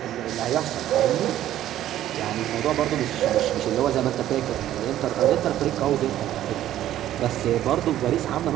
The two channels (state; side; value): quieter; left; 12.6 dB